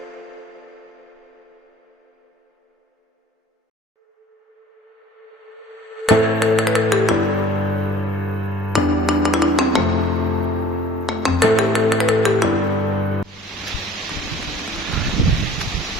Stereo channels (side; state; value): both; normal; correlation 0.50